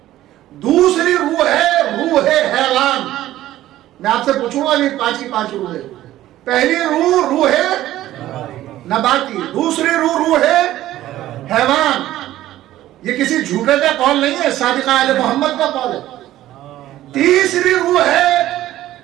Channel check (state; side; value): quieter; left; 14.3 dB